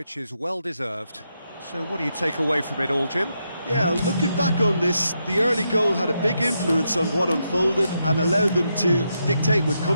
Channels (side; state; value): both; inverted; correlation -0.83